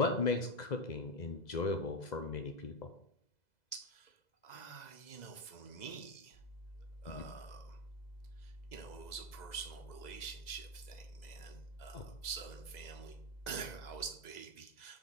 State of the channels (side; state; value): right; late; 2.0 ms